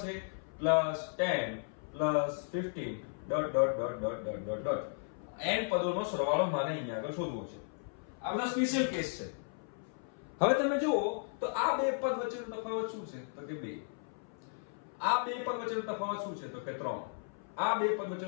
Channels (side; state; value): right; silent; 54 dB below the other